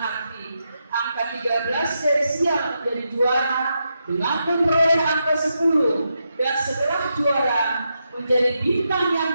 angka 13 dari sial menjadi juara dengan memperoleh angka 10 dan setelah juara menjadi bintang yang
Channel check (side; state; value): both; inverted; correlation -0.84